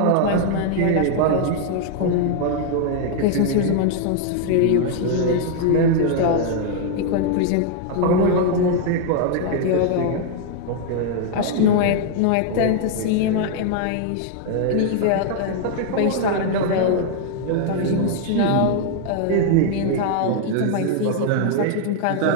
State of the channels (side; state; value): both; different; correlation 0.00